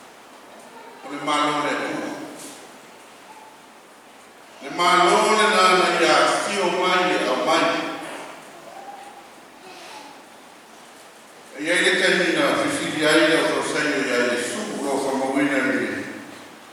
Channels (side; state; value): both; identical; correlation 1.00